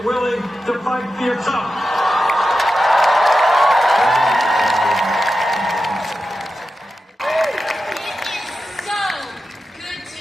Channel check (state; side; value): normal; both; correlation 0.91